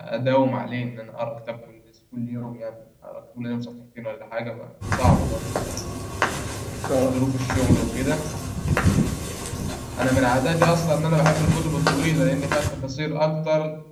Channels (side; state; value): both; identical; correlation 1.00